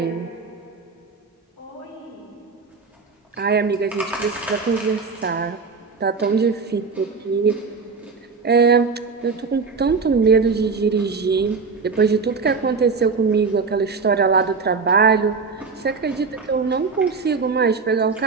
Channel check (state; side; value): quieter; left; 4.7 dB